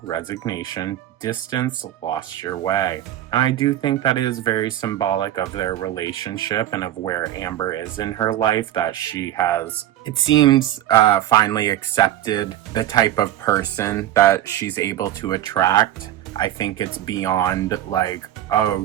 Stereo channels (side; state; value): left; quieter; 12.7 dB